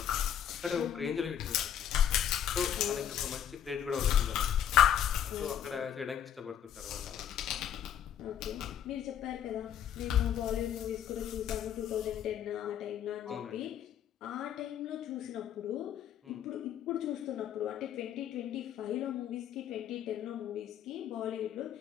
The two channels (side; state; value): right; quieter; 9.7 dB